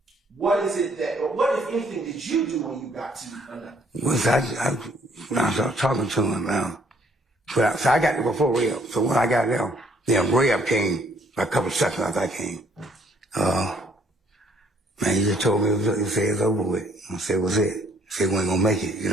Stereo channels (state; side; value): normal; both; correlation 0.64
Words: what if anything did you do when you got to Nut? Well, when I started talking to him, so I got there before Rev. So when I got there, then Rev came a couple of seconds after I came. Man, he just told me, he said it's over with. I said, what's it? He said, we ain't gonna make it, you